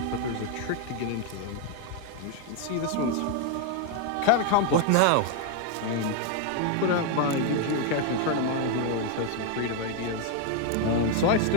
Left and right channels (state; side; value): different; both; correlation 0.01